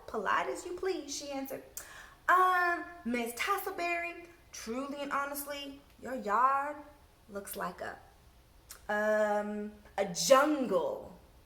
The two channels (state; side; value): identical; both; correlation 1.00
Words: polite as you please, she answered. Miss Tussleberry, truly and honestly, your yard looks like a jungle.